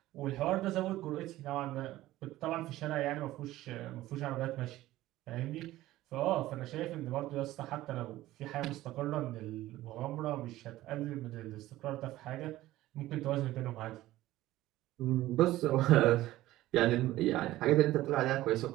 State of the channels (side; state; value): left; quieter; 16.0 dB